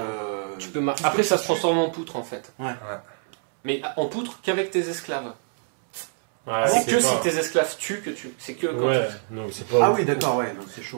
Tu peux Après, ça se transforme en poutre, en fait. Ouais. Mais en poutre qu'avec tes esclaves. Ouais, c'est que si tes esclaves tuent que tu. C'est que. quand Ouais, non, c'est pas. Ah oui, d'accord, ouais, non, c'est chaud.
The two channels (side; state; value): left; silent; 61 dB below the other